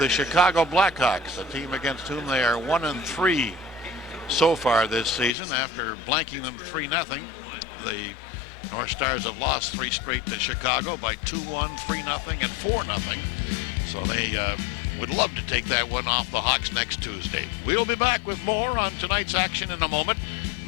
Chicago Blackhawks, a team against whom they are 1-3 so far this season. After blanking them 3-0, the North Stars have lost 3 straight to Chicago by 2-1, 3-0, and 4-0. So they would love to take that one off the Hawks next Tuesday. We'll be back with more on tonight's action in a moment.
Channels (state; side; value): drops out; right; at 5.4 s